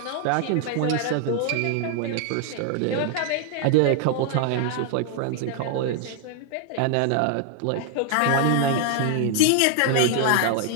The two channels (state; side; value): different; both; correlation 0.00